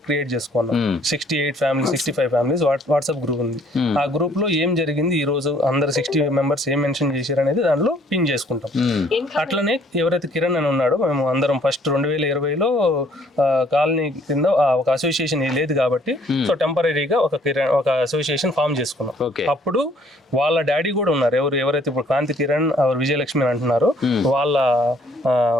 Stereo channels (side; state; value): both; normal; correlation 0.61